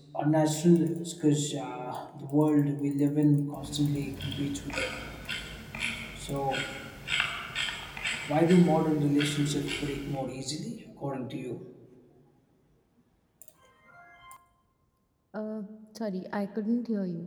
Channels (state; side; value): identical; both; correlation 1.00